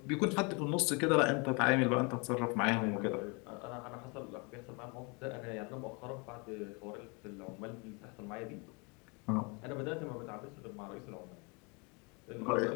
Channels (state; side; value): quieter; right; 31.0 dB